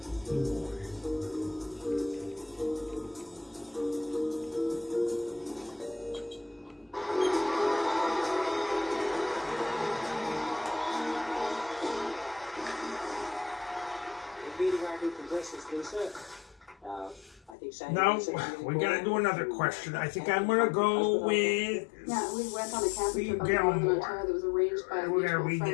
Hugh Morris. Now we gotta do another question. I think I'm gonna go with. Yeah, we went on a camping trip up in Ontario that was arranged by a We're gonna read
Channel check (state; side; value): drops out; right; at 17.6 s